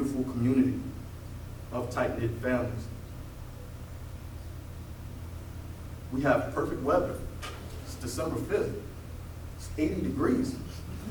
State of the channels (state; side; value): identical; both; correlation 1.00